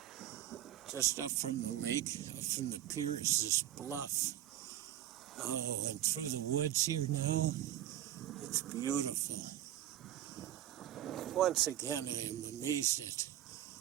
Just up from the lake, up from the pier, is this bluff. Oh, and through the woods here now, it's beautiful. Once again, I am amazed at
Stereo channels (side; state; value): left; quieter; 12.6 dB